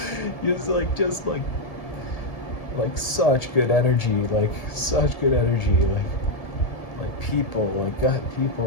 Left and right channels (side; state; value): right; late; 1.7 ms